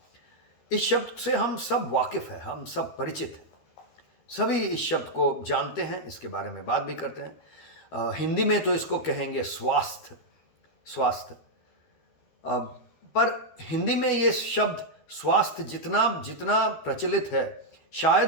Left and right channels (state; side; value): late; right; 12 ms